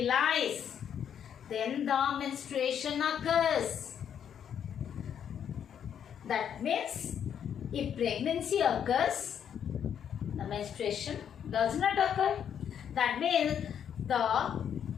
then the menstruation occurs. That means if pregnancy occurs, the menstruation does not occur. That means the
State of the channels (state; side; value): quieter; right; 8.7 dB